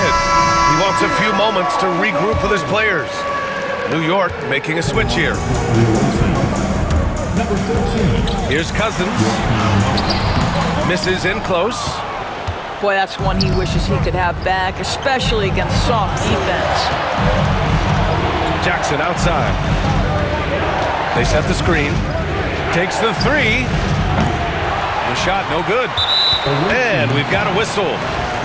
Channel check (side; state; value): both; identical; correlation 1.00